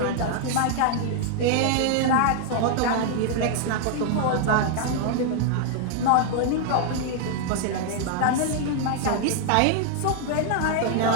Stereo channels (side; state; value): both; different; correlation 0.00